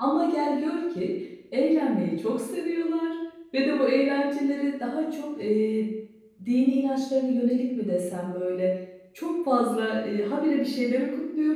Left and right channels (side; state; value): both; identical; correlation 1.00